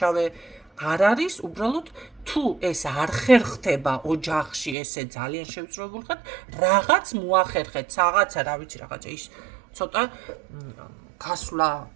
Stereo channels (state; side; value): drops out; left; at 4.8 s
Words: არ არის უბრალოდ თუ ეს არ ხერხდება ოჯახში ესე ძალიან შევწროებულ ხარ რაღაც მოახერხეთ რაღაცა რა ვიცი რაღაცა ის ცოტა გასვლა